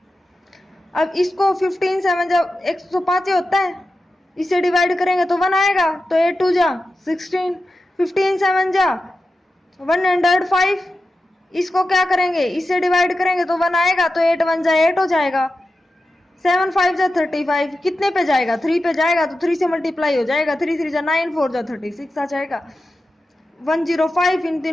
अब इसको 15 7 जा 105 होता है, इसे डिवाइड करेंगे तो 1 आएगा, तो 8 2 जा 16, 15 7 जा 105। इसको क्या करेंगे, इससे डिवाइड करेंगे तो 1 आएगा, तो 8 1 जा 8 हो जाएगा, 7 5 जा 35, कितने पे जाएगा 3 पे जाएगा, तो 3 से मल्टीप्लाई हो जाएगा, 3 3 जा 9 4 जा 36 आ जाएगा। 105 इन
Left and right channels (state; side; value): normal; both; correlation 0.92